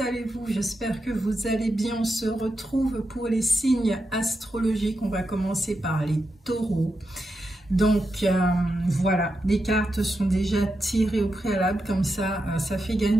J'espère que vous allez bien. On se retrouve pour les signes astrologiques. On va commencer par les taureaux. Donc voilà, les cartes sont déjà tirées au préalable, comme ça fait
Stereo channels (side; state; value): both; normal; correlation 0.87